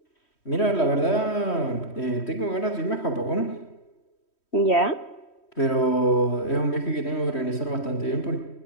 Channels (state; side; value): late; right; 3.1 ms